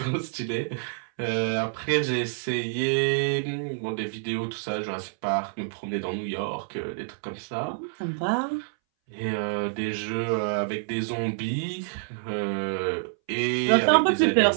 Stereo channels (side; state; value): left; silent; 60 dB below the other